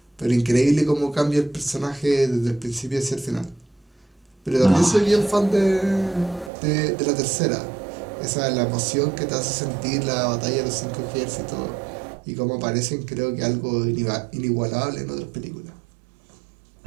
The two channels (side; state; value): left; drops out; at 6.5 s